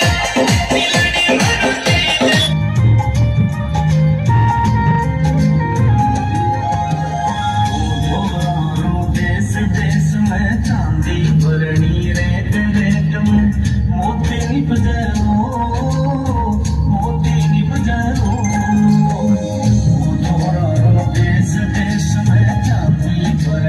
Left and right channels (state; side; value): identical; both; correlation 1.00